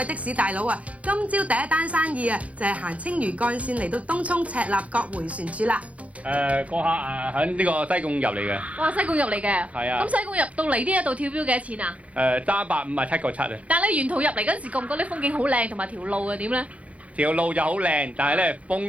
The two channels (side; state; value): left; late; 0.066 ms